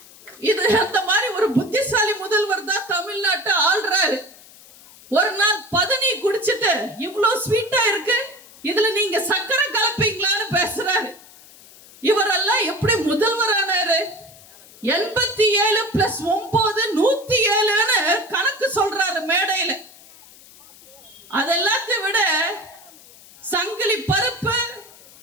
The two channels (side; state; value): left; noise; hiss, 22 dB below the sound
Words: இது அந்த மாதிரி ஒரு புத்திசாலி முதல்வர் தான் தமிழ்நாட்டை ஆள்றாரு. ஒரு நாள் பதனி குடிச்சிட்டு இவ்வளோ ஸ்வீட்டா இருக்கு, இதுல நீங்க சக்கரை கலப்பீங்களான்னு பேசுறாரு. இவரெல்லாம் எப்படி முதல்வர் ஆனாரு? 87 + 9 107ன்னு கணக்கு சொல்றாரு மேடையில. அதெல்லாத்தையும் விட சங்கிலி பருப்பு,